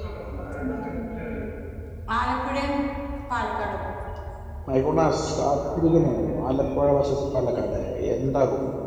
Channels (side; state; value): both; identical; correlation 1.00